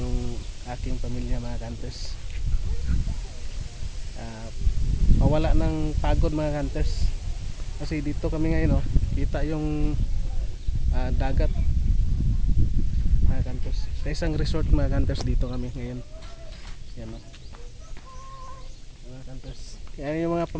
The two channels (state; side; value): identical; both; correlation 1.00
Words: aking pamilya mga kanters. Mawala ng pagod mga kanters. Kasi dito kami ngayon kita yung dagat mga kanters. Sa isang resort mga kanters dito kami ngayon. Yan o. Mga kanters. Yan yung mga